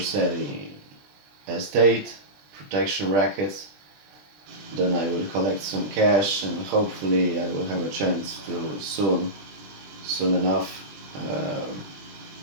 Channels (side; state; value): left; late; 20 ms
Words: Estate, protection rackets. Then I will collect some cash and hopefully I will have a chance to soon enough